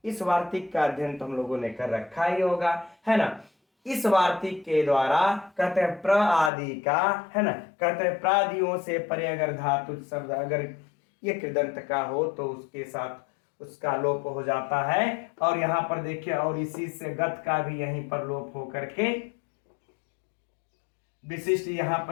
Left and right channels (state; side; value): drops out; right; at 6.5 s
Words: इस वार्तिक का अध्ययन तो हम लोगों ने कर रखा ही होगा, है ना। इस वार्तिक के द्वारा कहते हैं प्र आदि का, है ना, कहते हैं प्रादियों से परे अगर धातु शब्द अगर ये कृदंत का हो तो उसके साथ उसका लोप हो जाता है। और यहां पर देखिए, और इसी से गत का भी यहीं पर लोप हो करके विशिष्ट यहां